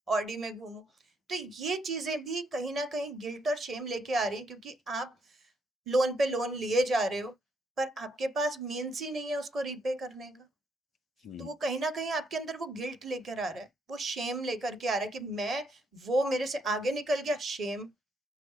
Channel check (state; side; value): normal; both; correlation 0.74